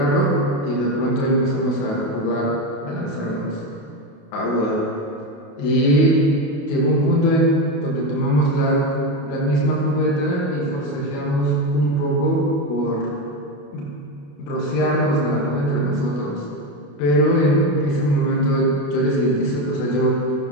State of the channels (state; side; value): late; right; 28 ms